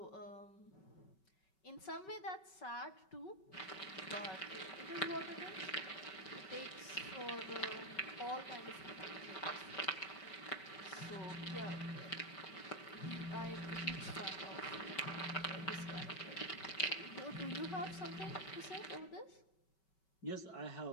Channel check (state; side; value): late; right; 5.3 ms